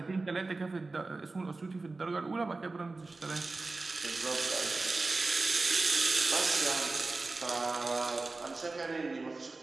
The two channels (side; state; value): left; quieter; 3.5 dB